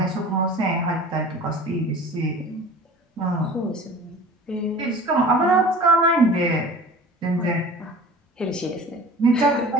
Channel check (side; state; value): both; normal; correlation 0.41